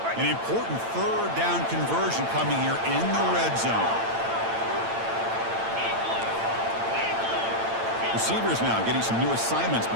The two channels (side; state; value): left; late; 8.9 ms